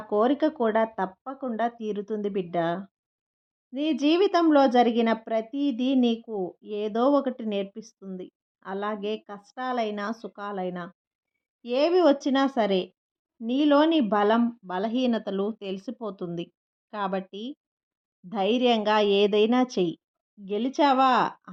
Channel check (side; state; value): both; identical; correlation 1.00